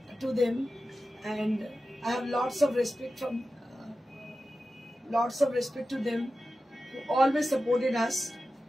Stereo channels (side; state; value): both; normal; correlation 0.93